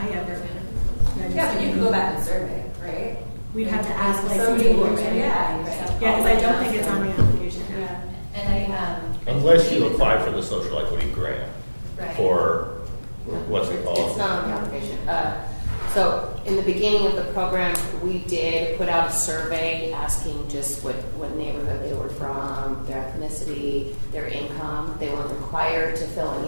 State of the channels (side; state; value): both; inverted; correlation -1.00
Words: ever. Yeah, but you can go back and survey, right? We'd have to ask Somebody licensing boards. would, Yeah, because I don't think it's on the application. Yeah, and Unless you apply for the social equity grant for, what's it called? It's not on the application. So in the beginning of the program, we did put out a survey asking just what neighborhood they were from, their ethnicity, their income. They weren't required to fill